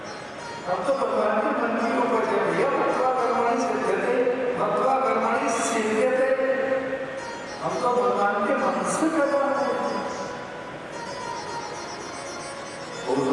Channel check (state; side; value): identical; both; correlation 1.00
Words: हम तो भगवान के मन की ऊपर जब भैया भक्त्वा कर्मणि सिद्ध्यते, भक्त्वा कर्मणि सिद्ध्यते, हम तो भगवान के मन से कर्म करते हैं।